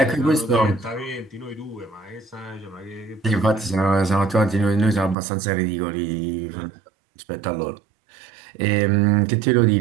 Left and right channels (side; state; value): left; drops out; at 5.2 s